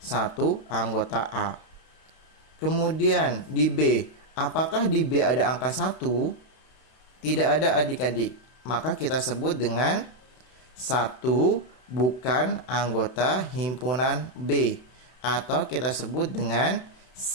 anggota A. Kemudian di B, apakah di B ada angka 1? Tidak ada, adik-adik. Maka kita sebut dengan 1 bukan anggota himpunan B. Atau kita sebut dengan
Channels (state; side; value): late; right; 31 ms